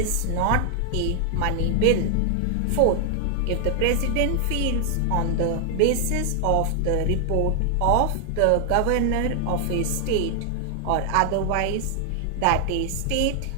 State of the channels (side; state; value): both; different; correlation 0.00